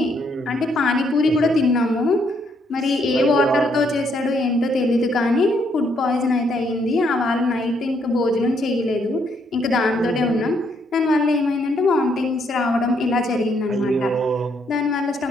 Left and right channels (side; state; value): both; normal; correlation 0.72